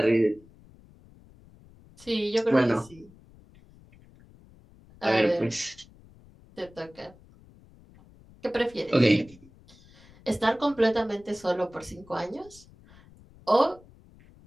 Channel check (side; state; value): left; noise; rumble, 25 dB below the sound